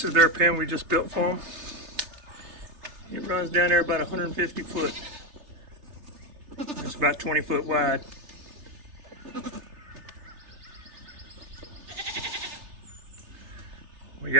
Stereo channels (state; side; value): late; left; 3.3 ms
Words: is their pen we just built for them. It runs down there about 150 foot. It's about 20 foot wide. We